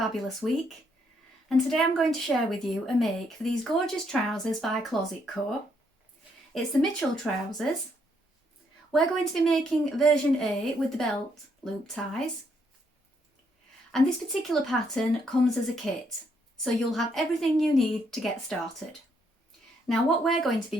week. And today I'm going to share with you a make for these gorgeous trousers by Closet Co. It's the Mitchell trousers. We're going to be making version A with the belt loop ties. And this particular pattern comes as a kit, so you'll have everything you need to get started. Now what we're going to be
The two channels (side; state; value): both; normal; correlation 0.73